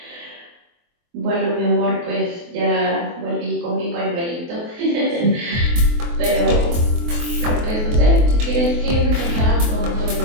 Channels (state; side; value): late; left; 24 ms